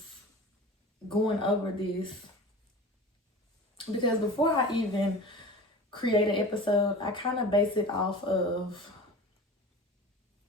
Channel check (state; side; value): normal; both; correlation 0.36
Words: going over this, because before I even create an episode, I kind of base it off of